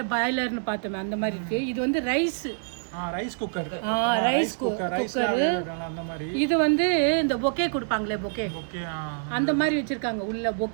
பாய்லர்னு பார்த்தோமே அந்த மாதிரி இருக்கு. இது வந்து ரைஸ் குக்கர், அந்த மாதிரி. இது வந்து இந்த பொக்கே கொடுப்பாங்களே, பொக்கே அந்த மாதிரி வச்சிருக்காங்க உள்ள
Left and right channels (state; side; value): silent; left; digital silence